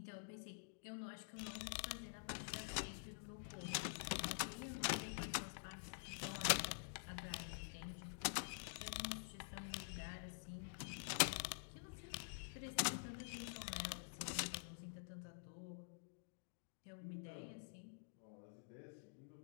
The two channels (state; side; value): silent; right; digital silence